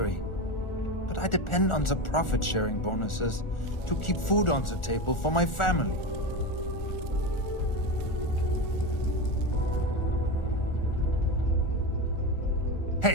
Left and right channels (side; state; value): right; late; 1.4 ms